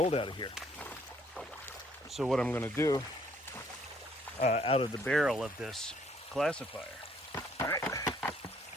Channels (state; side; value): normal; both; correlation 0.64